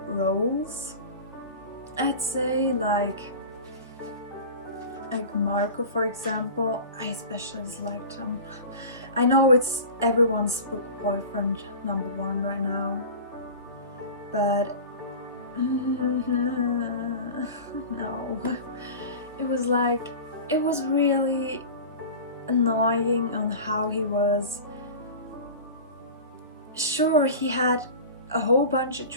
roles, I'd say. Like Marco, for example, I especially disliked him. I know it's everyone's book boyfriend #1 right now, but no. It was really annoying on how he was. Sure, he had a whole bunch of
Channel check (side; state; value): both; inverted; correlation -0.34